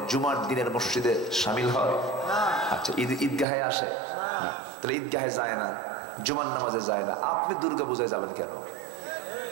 জুমার দিনের মসজিদে শামিল হয়? আচ্ছা, ঈদগাহে আসে না, তাহলে ঈদগাহে যায় না, জুমার নামাজে যায় না, আপনি দুর্গা পূজায় যাবেন কেন?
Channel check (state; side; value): drops out; left; at 3.5 s